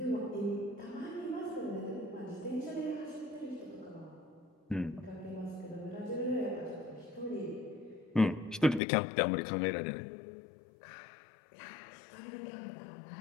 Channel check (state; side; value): drops out; right; at 8.8 s